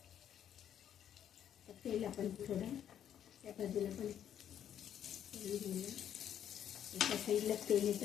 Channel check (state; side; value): quieter; right; 9.8 dB